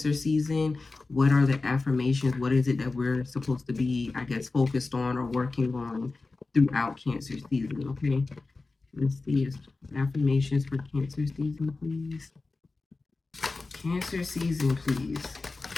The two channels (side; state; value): right; quieter; 3.6 dB